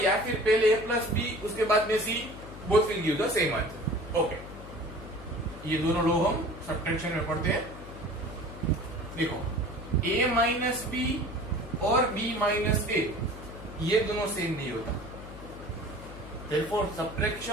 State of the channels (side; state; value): left; noise; hum, 13 dB below the sound